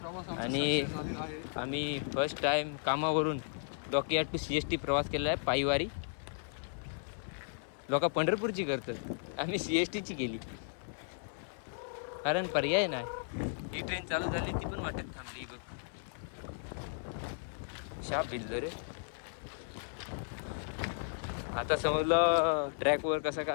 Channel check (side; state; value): right; silent; 54 dB below the other